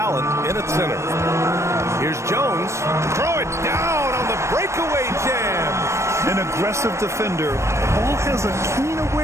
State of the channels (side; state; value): left; late; 0.13 ms